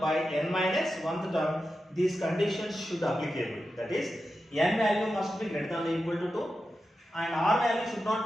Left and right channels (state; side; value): normal; both; correlation 0.91